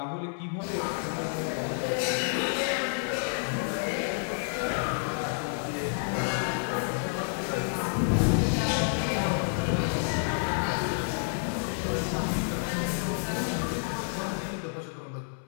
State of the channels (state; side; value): silent; right; 58 dB below the other